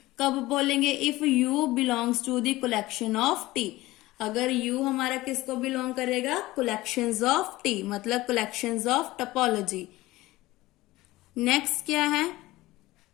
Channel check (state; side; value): quieter; right; 18.4 dB